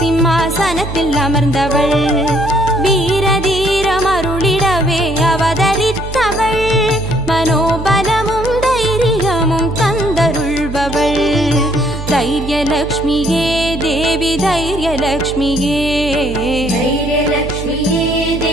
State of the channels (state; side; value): noise; right; hum, 8 dB below the sound